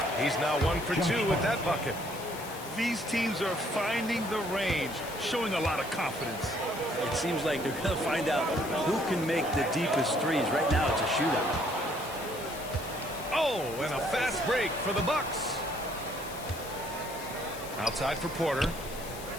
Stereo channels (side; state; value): left; noise; hiss, 14 dB below the sound